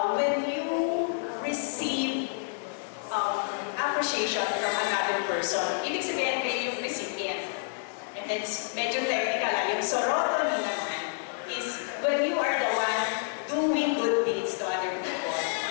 appreciation from another person. Ibig sabihin kayo yung recipient. And then, medyo technical, yung sorotonin naman is when you are the one doing good deeds to other people.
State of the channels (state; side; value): silent; right; digital silence